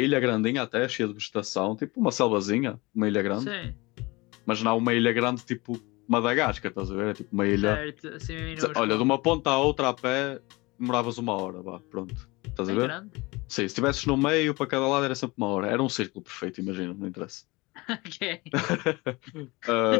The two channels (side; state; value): right; quieter; 23.5 dB